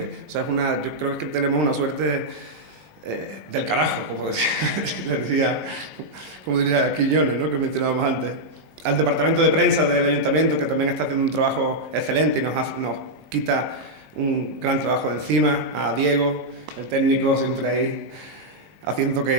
O sea, yo creo que tenemos una suerte del carajo, como diría Quiñones, ¿no? Que mencionábamos antes. Al departamento de prensa del ayuntamiento, que también está haciendo un trabajo excelente y nos quita un gran trabajo de encima. A Diego, el técnico, siempre ahí haciendo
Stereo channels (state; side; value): normal; both; correlation -0.05